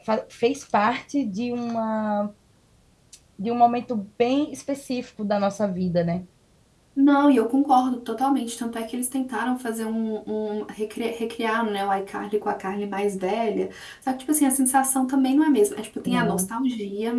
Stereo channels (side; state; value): both; identical; correlation 1.00